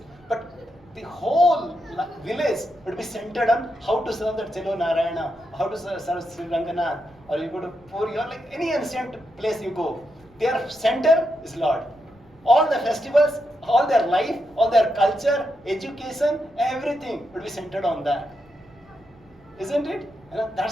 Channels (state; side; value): noise; right; rumble, 28 dB below the sound